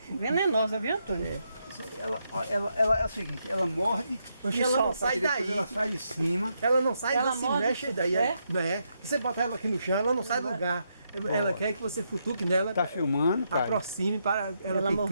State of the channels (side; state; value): both; inverted; correlation -0.80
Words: Venenosa, viu, Antônio? Ela é o seguinte, ela morde E ela não sai depois daí. ela sai de cima. Ela não sai, Ela ela se morde, mexe daí. é? É. Você botar ela aqui no chão, ela não sai do lugar. Ela quer que você futuque nela, Tá filmando, cara. aproxime para ela Ela